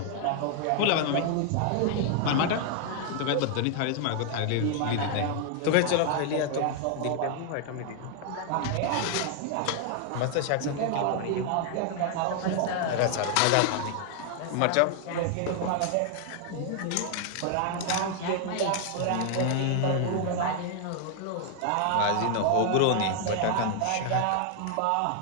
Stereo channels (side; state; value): both; different; correlation 0.00